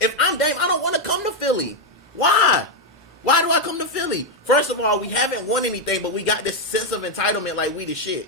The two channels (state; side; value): normal; both; correlation 0.03